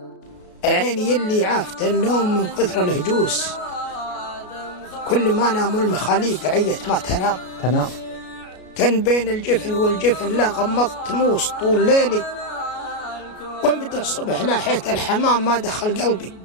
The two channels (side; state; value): right; late; 33 ms